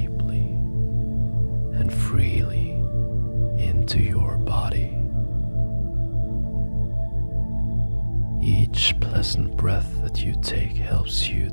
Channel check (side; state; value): both; inverted; correlation -1.00